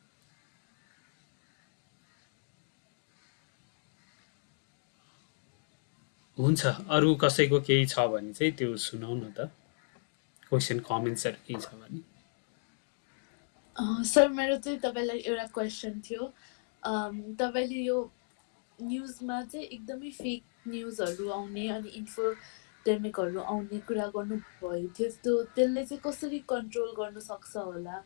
हुन्छ अरू कसैको केही छ भने चाहिँ त्यो सुनाउ न त क्वेसन कमेन्ट्सहरू केही छ भने सर मेरो चाहिँ तपाईँलाई एउटा क्वेसन थियो तपाईँले यो न्युजमा चाहिँ एकदमै फेक न्युजहरू आउने अनि इन्फोडेमिकहरू आउने कुरा गर्नुभयो थियो त्यसले चाहिँ कसरी कन्ट्रोल गर्न सक्छ होला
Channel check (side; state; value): right; silent; digital silence